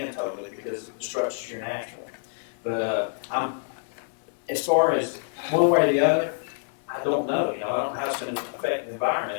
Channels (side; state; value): right; silent; 60 dB below the other